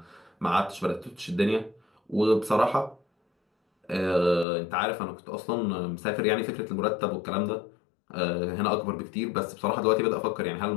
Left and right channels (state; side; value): drops out; right; at 4.5 s